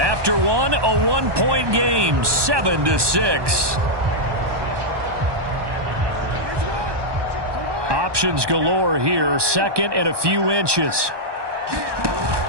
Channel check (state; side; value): late; left; 1.2 ms